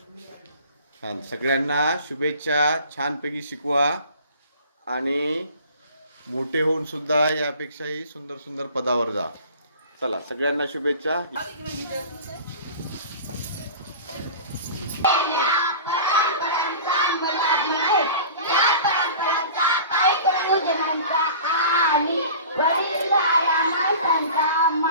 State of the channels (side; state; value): both; inverted; correlation -0.40